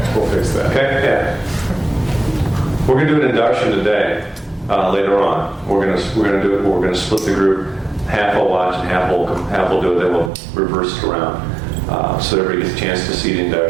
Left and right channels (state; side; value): drops out; left; at 10.3 s